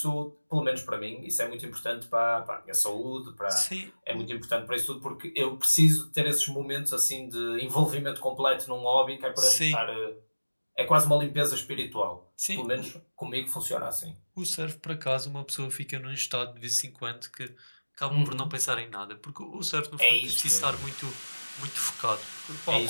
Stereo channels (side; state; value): both; inverted; correlation -1.00